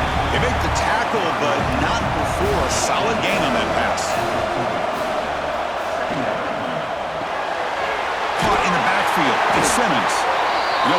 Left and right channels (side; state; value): both; identical; correlation 1.00